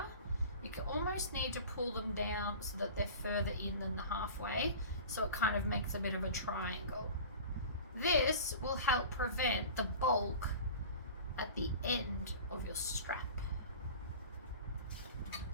You can almost need to pull them down so that they're further in than the halfway, so it kind of makes a bit of a triangle. This will help prevent the bulk at the end of your strap.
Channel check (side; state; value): both; inverted; correlation -0.38